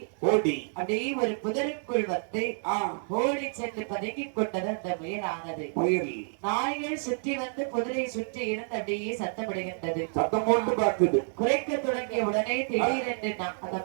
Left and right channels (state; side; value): silent; left; digital silence